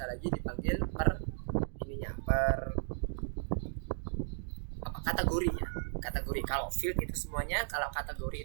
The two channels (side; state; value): left; silent; digital silence